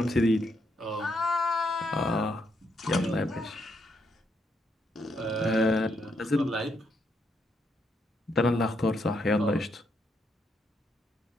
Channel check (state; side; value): normal; both; correlation 0.77